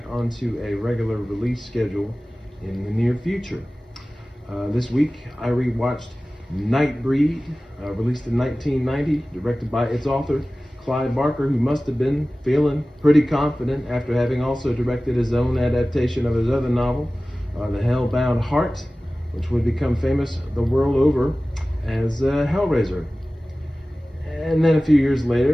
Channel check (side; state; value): both; normal; correlation 0.97